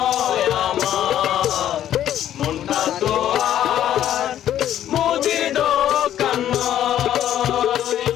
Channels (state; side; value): quieter; right; 11.3 dB